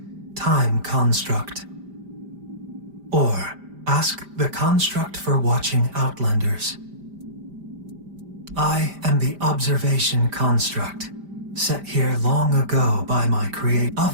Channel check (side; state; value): left; late; 5.0 ms